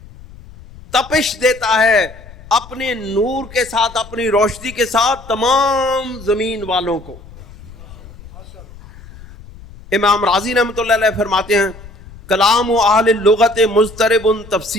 تپش دیتا ہے اپنے نور کے ساتھ، اپنی روشنی کے ساتھ تمام زمین والوں کو. امام رازی رحمۃ اللہ علیہ فرماتے ہیں کلام اہل اللغت مضطرب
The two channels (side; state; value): left; noise; rumble, 19 dB below the sound